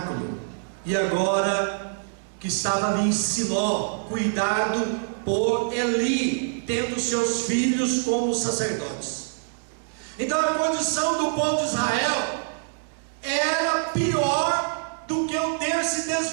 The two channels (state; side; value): silent; left; digital silence